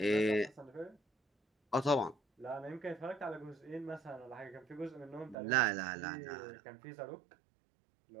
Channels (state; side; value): drops out; left; at 5.4 s